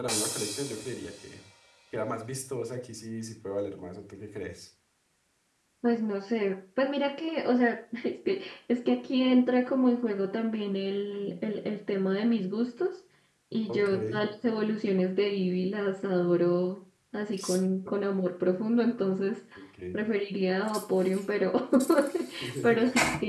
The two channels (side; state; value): both; identical; correlation 1.00